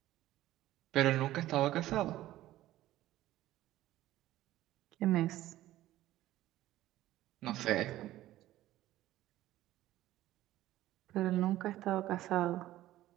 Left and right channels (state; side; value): quieter; left; 14.9 dB